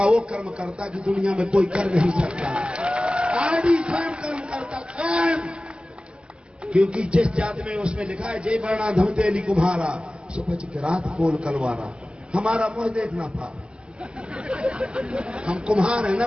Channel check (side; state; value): left; late; 0.052 ms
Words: वो कर्म करता कि दुनिया में कोई कर नहीं सकता। आदि स्वयं कर्म करता स्वयं, क्योंकि जिस जाति में उसमें लिखा है जय वर्णा धम तेली कुम्हारा सुपच के रात कोल कलवारा। हमारा मुंह देखना पाप, हम कुम्हार है ना,